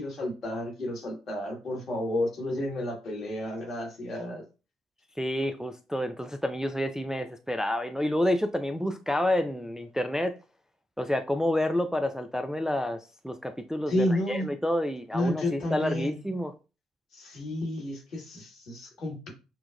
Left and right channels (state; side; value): normal; both; correlation 0.88